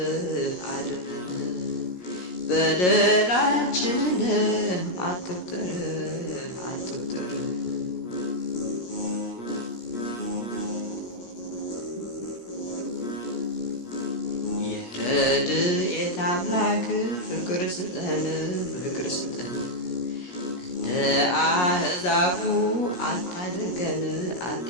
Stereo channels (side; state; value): right; late; 17 ms